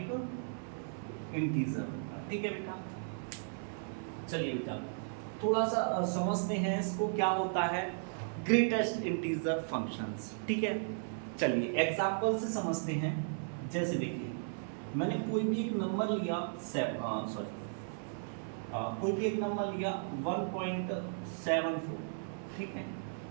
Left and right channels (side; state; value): left; silent; 54 dB below the other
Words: इंटीजर, ठीक है बेटा। चलिए बेटा थोड़ा सा समझते हैं इसको क्या होता है ग्रेटेस्ट इंटीजर फंक्शंस, ठीक है। चलिए एग्जांपल से समझते हैं। जैसे देखिए मैंने कोई भी एक नंबर लिया कोई भी एक नंबर लिया 1.74, ठीक है।